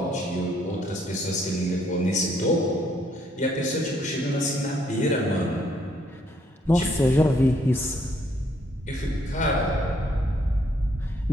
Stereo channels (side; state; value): both; normal; correlation 0.69